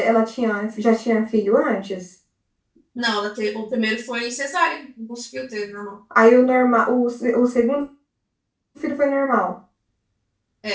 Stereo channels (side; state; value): both; identical; correlation 1.00